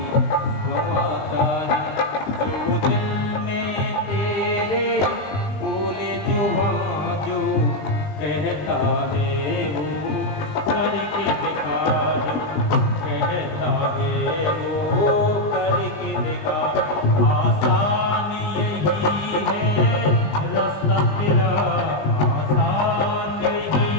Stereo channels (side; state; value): right; late; 20 ms